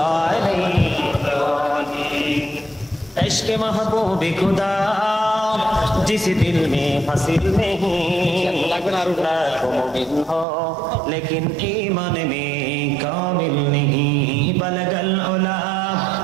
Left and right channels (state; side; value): drops out; left; at 10.5 s